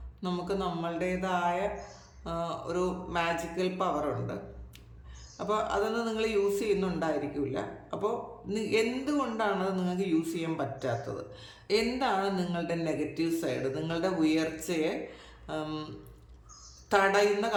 നമുക്ക് നമ്മളുടേതായ ഒരു മാജിക്കൽ പവറുണ്ട്. അപ്പോൾ അതൊന്നും നിങ്ങൾ യൂസ് ചെയ്യുന്നുണ്ടായിരിക്കില്ല. അപ്പോൾ എന്തുകൊണ്ടാണത് നിങ്ങൾക്ക് യൂസ് ചെയ്യാൻ പറ്റാത്തത്? എന്താണ് നിങ്ങളുടെ നെഗറ്റീവ് സൈഡ്? നിങ്ങളുടെ ഉയർച്ചയെ തടയുന്ന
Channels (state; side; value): identical; both; correlation 1.00